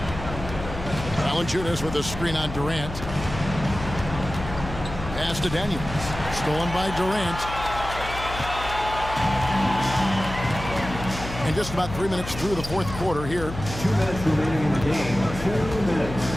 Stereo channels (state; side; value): noise; left; hum, 9 dB below the sound